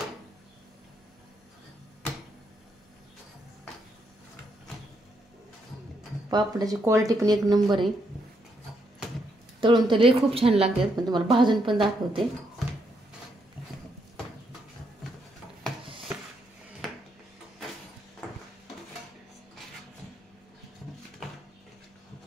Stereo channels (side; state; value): both; normal; correlation 0.77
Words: पापडाची क्वालिटी पण एक नंबर आहे. तळून तर लई खूप छान लागतात, पण तुम्हाला भाजून पण दाखवते.